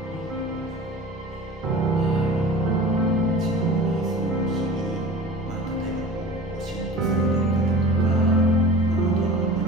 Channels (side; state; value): both; normal; correlation 0.39